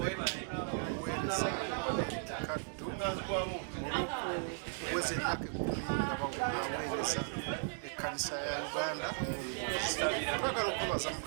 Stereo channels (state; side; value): silent; left; 53 dB below the other